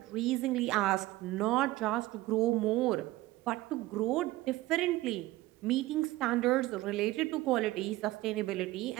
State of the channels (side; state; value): left; quieter; 17.9 dB